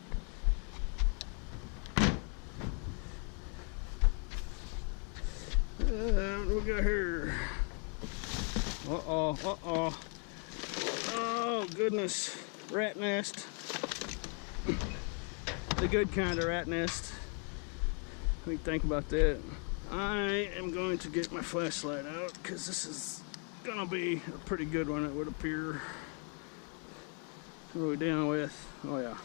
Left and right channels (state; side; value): quieter; right; 39.8 dB